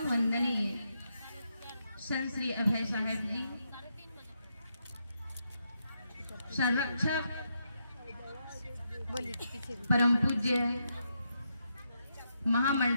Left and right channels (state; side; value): inverted; both; correlation -0.81